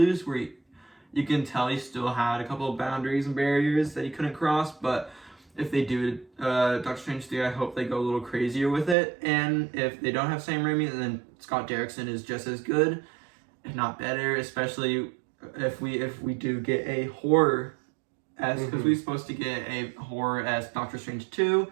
where you can tell he still had a couple of boundaries and barriers that he couldn't cross. But if they do Doctor Strange 3, I hope they go a little crazier with it. And if they don't have Sam Raimi, then Scott Derrickson is just as good, if not better, especially if we do get a horror because we're supposed to get a horror as Doctor Strange 2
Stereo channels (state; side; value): drops out; left; at 9.0 s